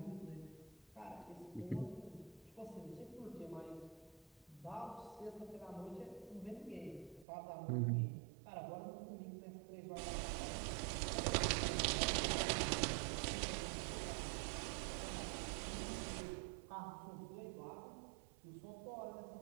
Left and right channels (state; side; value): drops out; left; at 7.2 s